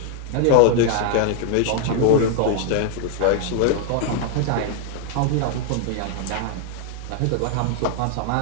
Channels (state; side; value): different; both; correlation 0.00